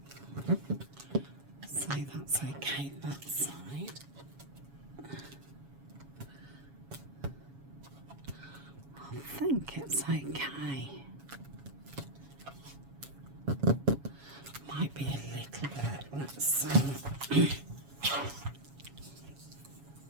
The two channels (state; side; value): late; left; 7.2 ms